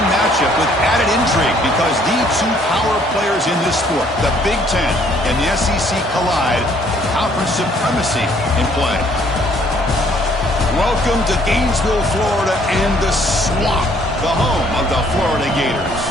matchup with added intrigue because the two power players in this sport, the Big Ten and the SEC, collide. Conference supremacy in play. Welcome to Gainesville, Florida, and the swamp, the home of the Florida Gators.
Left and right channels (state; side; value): normal; both; correlation 0.63